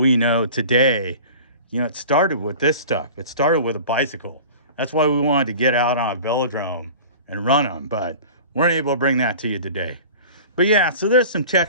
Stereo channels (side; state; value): both; inverted; correlation -0.40